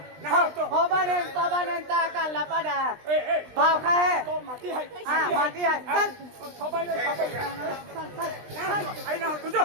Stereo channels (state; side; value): late; left; 20 ms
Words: होबाने ता काला पाडा भाव खाए माटी है हां माटी है चल सबाई आई ना तुझो